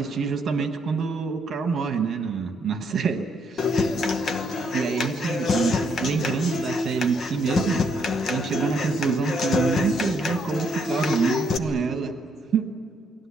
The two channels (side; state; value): both; normal; correlation 0.72